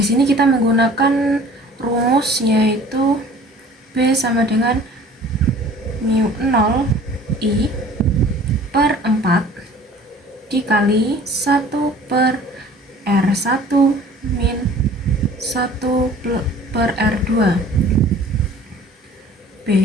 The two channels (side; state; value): both; normal; correlation 0.48